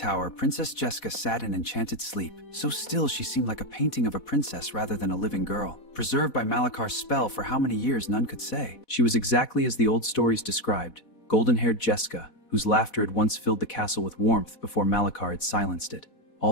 Princess Jessica sat in enchanted sleep. So still, she seemed like a painting of a princess rather than a living girl, preserved by Malakar's spell for how many years none could say. She was exactly as the old stories described, golden-haired Jessica, whose laughter had once filled the castle with warmth before Malakar had silenced it.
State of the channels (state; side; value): late; right; 4.1 ms